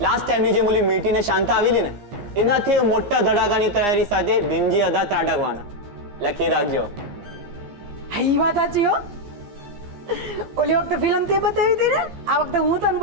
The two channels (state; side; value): late; left; 15 ms